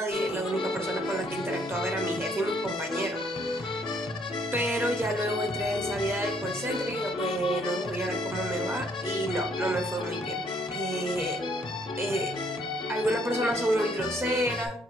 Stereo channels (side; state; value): both; normal; correlation 0.66